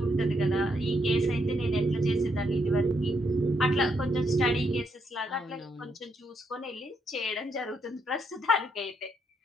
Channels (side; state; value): both; normal; correlation 0.76